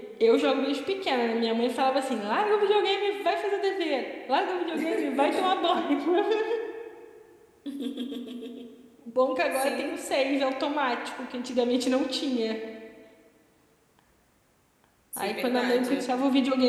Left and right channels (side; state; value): both; identical; correlation 1.00